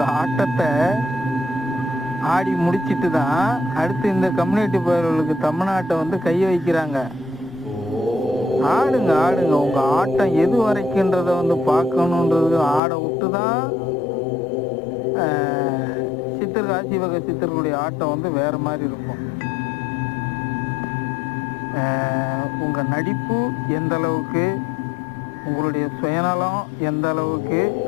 ஆட்டத்தை ஆடி முடிச்சிட்டு தான் அடுத்து இந்த கம்யூனிட்டி பயிர்களுக்கு தமிழ்நாட்டை வந்து கை வைக்கிறாங்க. ஆடுங்க உங்கள் ஆட்டம் எது வரைக்குன்றதை வந்து பார்க்கணுன்றது ஆடை விட்டு தான் சித்தர்கள் ஆசி வகை சித்தர்களுடைய ஆட்டம் வந்து வேறு மாதிரி இருக்கும். உங்கள் நடிப்பு எந்த அளவுக்கு, உங்களுடைய சுயநலம் எந்த அளவுக்கு,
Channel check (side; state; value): right; drops out; at 12.8 s